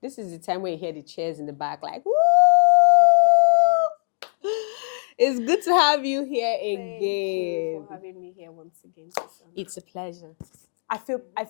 This is the time when you hear the cheers in the back, like, woo! It's good to have you here again. Thank you for having me here once again, Susan. It's a pleasure. I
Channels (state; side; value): silent; right; digital silence